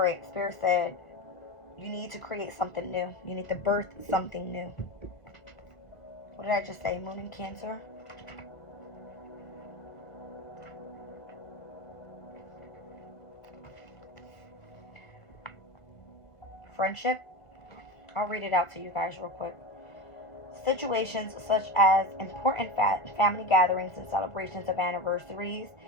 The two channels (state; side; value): late; right; 1.6 ms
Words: right, Spirit said you need to create something new. You need to birth something new. What did I just say? Moon in Cancer. Friendship. I'll read it out to you guys real quick. Situations such as important family gatherings and celebrations of anniversaries,